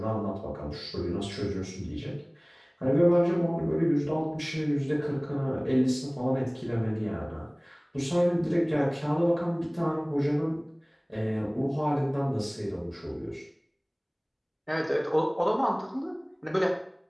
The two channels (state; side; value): identical; both; correlation 1.00